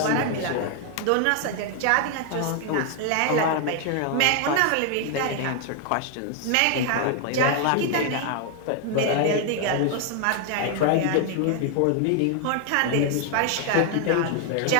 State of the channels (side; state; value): both; different; correlation 0.00